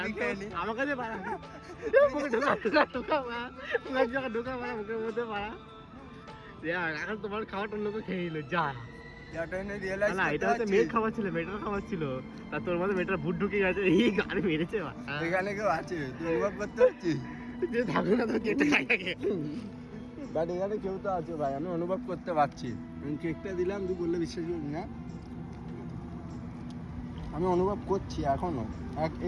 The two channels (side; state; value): both; identical; correlation 1.00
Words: খেয়ে নি। আমার কাছে পারা মুখে ঢোকা মুখের মধ্যে পারা। এখন তোমার খাওয়াটা অন্য কেউ খেয়ে নিল, যা। না এটা হচ্ছে মেয়ের খাবার ছিল, মেয়েটার খাবার ছিল, তা তোর মধ্যে মেয়েটার ভুট ঢুকে গেছে, এই গাড়ি মেরেছে। এখানে কেউ আছে, তুই অনুভব করতে পারছিস? যে থাকো না তো কেটে খাই আগে। বাট এখানে কেউ তো আছে ভাই, আমি অনুভব করতে পারছি। আমি কেকটা দিলাম, তুই বললে বিশ্বাস করবি না, আমি অনুভব করছি এখনো,